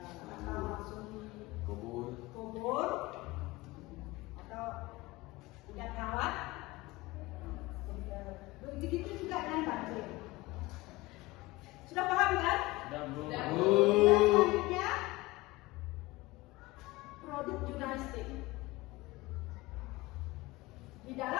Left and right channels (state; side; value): quieter; right; 20.8 dB